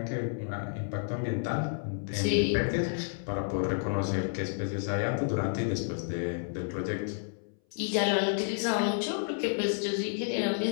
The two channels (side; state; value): right; silent; 57 dB below the other